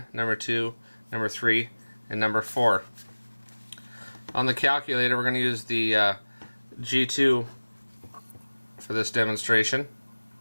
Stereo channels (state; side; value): inverted; both; correlation -1.00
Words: number 2, number 3, and number 4. On the calculator, we're going to use the G2 for this demonstration.